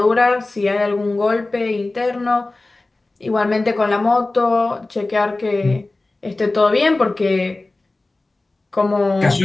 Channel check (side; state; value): right; quieter; 3.1 dB